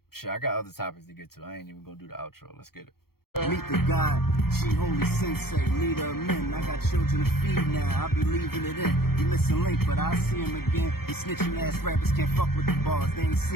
Shit, I got other topics to get to. I ain't even gonna do the outro. Let's get it. Meet the God, G Holy Sensei, leader of men. I got children to feed now, I'll be leaving it in. You missing Link, but I'll see him again. These snitching ass rappers can't fuck with the bars, they ain't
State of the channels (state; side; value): late; right; 0.94 ms